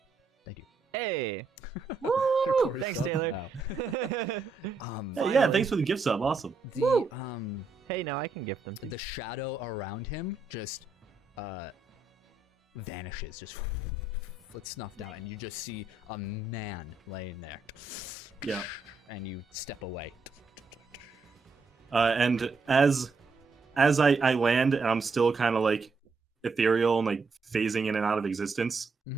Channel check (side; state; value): left; quieter; 4.0 dB